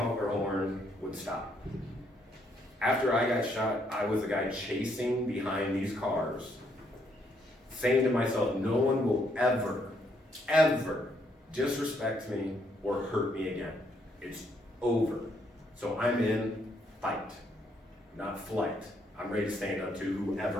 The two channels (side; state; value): both; normal; correlation 0.72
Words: their horn, would stop. After I got shot, I was the guy chasing behind these cars, saying to myself, no one will ever, ever disrespect me or hurt me again. It's over. So I'm in fight, not flight. I'm ready to stand up to